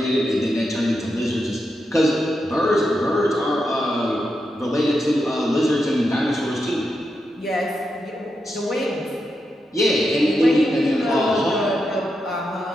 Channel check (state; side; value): normal; both; correlation 0.86